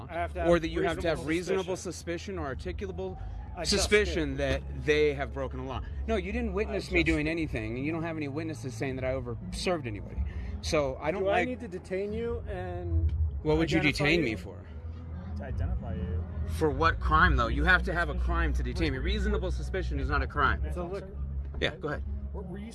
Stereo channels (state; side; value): identical; both; correlation 1.00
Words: or that you have to have reasonable suspicion or articulable suspicion that they have broken the law. No, you didn't witness me doing anything, and you don't have any witnesses saying that I overserved anybody. So I don't I need to detain you and... What would you detain me for? To identify you. For what crime, though? You have to have a crime to detain me. Reasonable suspicion is not a crime. It's a liquor. Yeah, go ahead. Were you